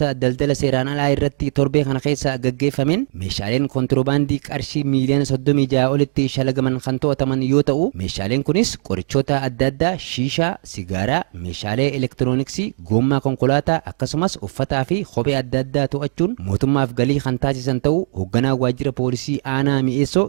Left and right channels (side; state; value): left; silent; digital silence